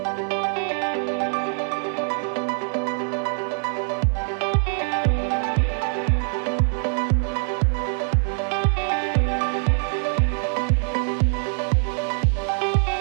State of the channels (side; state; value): left; silent; 59 dB below the other